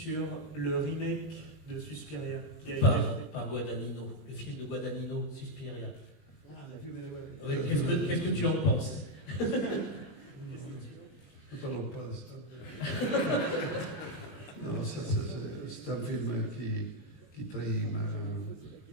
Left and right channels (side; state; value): right; late; 20 ms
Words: le remake de Suspiria qui a été par Guadagnino, le film de Guadagnino, Suspiria. Ah, la vue, ouais. Oui, qu'est-ce que tu en penses? Ne parlons pas de ça. Non, c'est un film qui trahit